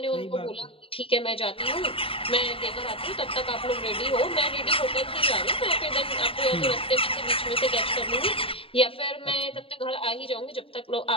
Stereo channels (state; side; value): late; right; 0.27 ms